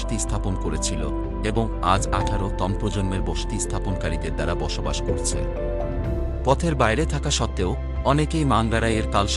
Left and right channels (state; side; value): identical; both; correlation 1.00